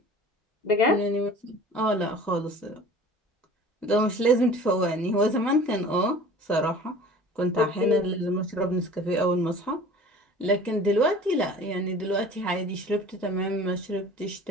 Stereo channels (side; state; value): both; normal; correlation 0.44